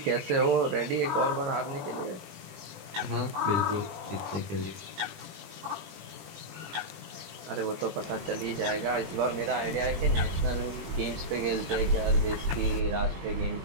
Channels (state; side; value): late; left; 20 ms